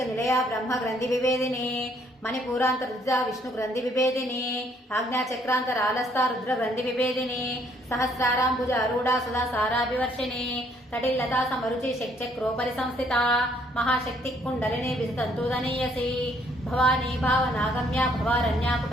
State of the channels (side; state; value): both; normal; correlation 0.66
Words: నిలయ బ్రహ్మ గ్రంథి విభేదిని మణిపూరాంత రుద్ర విష్ణు గ్రంథి విభేదిని ఆజ్ఞా చక్రాంతరాలస్థ రుద్ర గ్రంథి విభేదిని సహస్రారాంబుజ అరూఢ సుధా సారాభివర్షిణి తటిల్లతా సమరుచి శక్చక్రోపరి సంస్థిత మహాశక్తి కుండలిని వితంతుదనీయసి భవానీ భావనాగమ్య భవారణ్యా